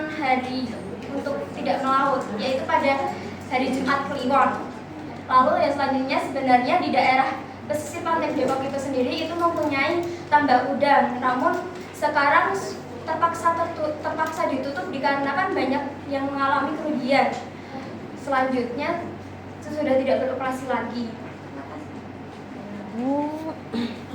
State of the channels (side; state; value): both; identical; correlation 1.00